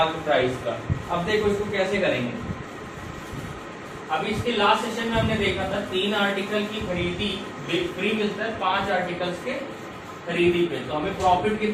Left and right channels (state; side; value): identical; both; correlation 1.00